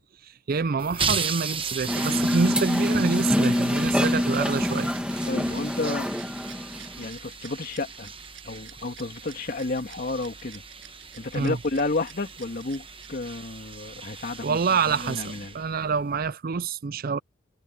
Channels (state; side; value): normal; both; correlation 0.45